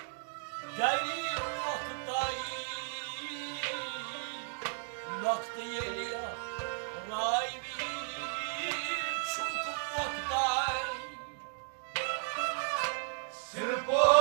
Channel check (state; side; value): silent; left; 55 dB below the other